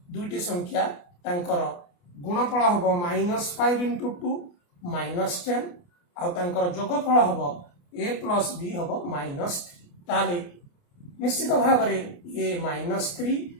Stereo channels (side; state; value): right; late; 29 ms